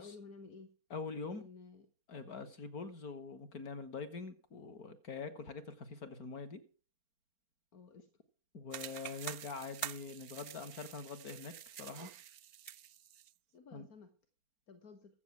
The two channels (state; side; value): late; right; 4.4 ms